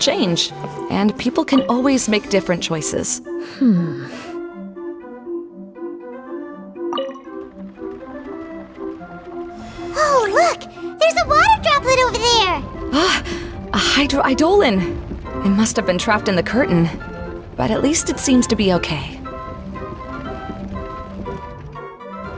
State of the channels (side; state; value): both; identical; correlation 1.00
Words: and people can always make different choices. Oh, look! There's a water droplet over there! Ah, a hydroidolin! It must have been trapped in the curtain, but at least it seems to be okay.